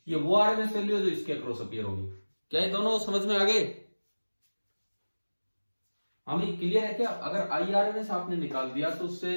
ये वो RMS वैल्यू है जो इसके क्रॉस अपीयर होगी। क्या ये दोनों समझ में आ गए? हमें क्लियर है क्या? अगर IRMS आपने निकाल दिया तो उससे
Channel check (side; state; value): both; inverted; correlation -1.00